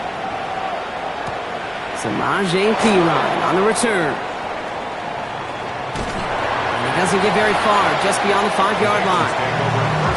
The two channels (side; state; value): both; identical; correlation 1.00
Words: Samaje Perine on the return. And he doesn't get very far, just beyond the 5-yard line.